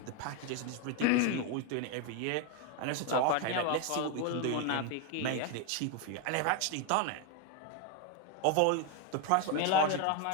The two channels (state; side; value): different; both; correlation 0.01